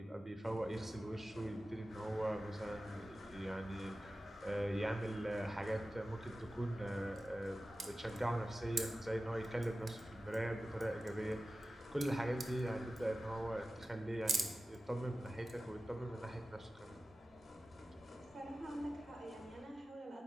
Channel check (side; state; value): both; normal; correlation 0.95